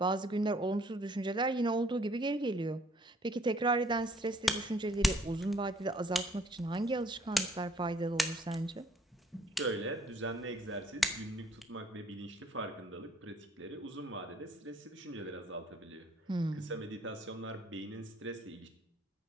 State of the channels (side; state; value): both; normal; correlation 0.61